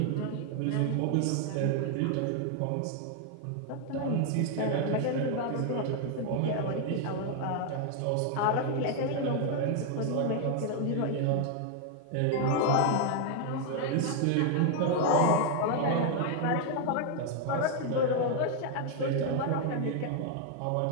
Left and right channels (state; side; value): different; both; correlation 0.00